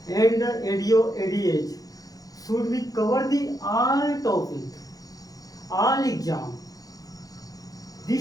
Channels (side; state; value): right; late; 0.18 ms